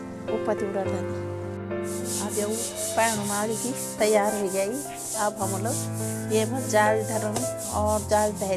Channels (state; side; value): identical; both; correlation 1.00